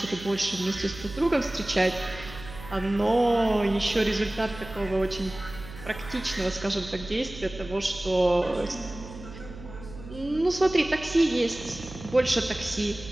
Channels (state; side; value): noise; right; hum, 15 dB below the sound